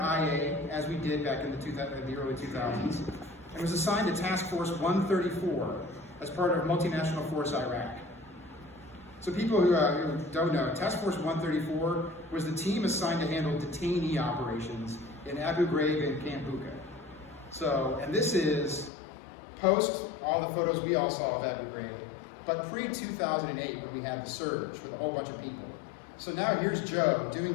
as we did back in the early 2000s, and was assigned to Task Force 134 as part of multinational force Iraq. So people who don't know, Task Force 134 was the team assigned to handle detainee operations in Abu Ghraib and Camp Bucca. So, and this is post all the photos we all saw of Abu Ghraib, but pre-2008 when we had the surge with a whole bunch of people. So now here's Joe doing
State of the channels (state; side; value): drops out; right; at 18.9 s